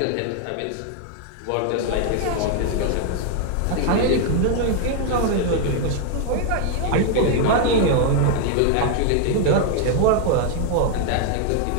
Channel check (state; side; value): different; both; correlation 0.00